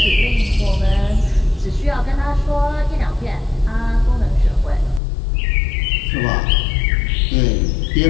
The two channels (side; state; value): right; drops out; at 5.0 s